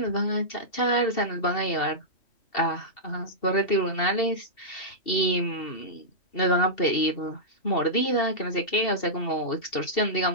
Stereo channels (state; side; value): late; right; 2.7 ms